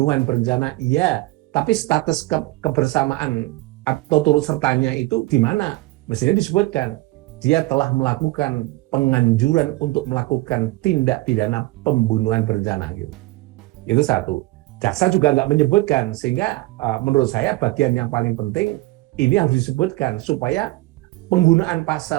berencana, iya, tapi status kebersamaan atau turut sertanya itu di mana? Mestinya disebutkan dia telah melakukan penganjuran untuk melakukan tindak pidana pembunuhan berencana gitu. Itu satu. Jaksa juga nggak menyebutkan, sehingga menurut saya bagian yang paling penting ini harus disebutkan supaya penggunaan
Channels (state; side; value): quieter; left; 20.3 dB